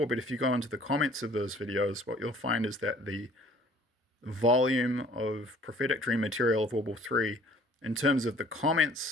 but if you go into the comments of those videos, what you'll find is that the volume of prophetic dream material of World War III, in terms of the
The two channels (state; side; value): normal; both; correlation 0.54